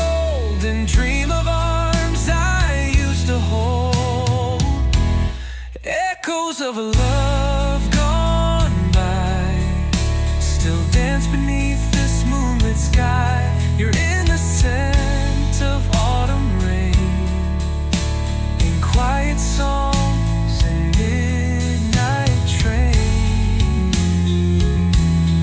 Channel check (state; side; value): identical; both; correlation 1.00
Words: and dream of arms I used to hold. Echoes of a love gone by still dance beneath this moonlit sky. You're in the scent of autumn rain, in quiet songs and midnight train.